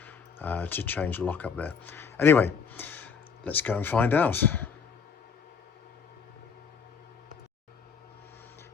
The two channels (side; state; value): right; quieter; 6.1 dB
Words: to change the lock up there. Anyway, let's go and find out.